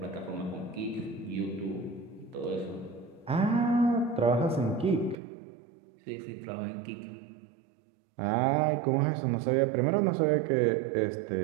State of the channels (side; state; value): left; drops out; at 5.2 s